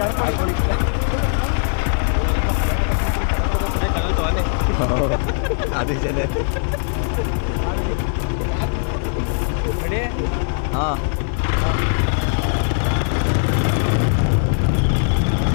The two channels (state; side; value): silent; right; 66 dB below the other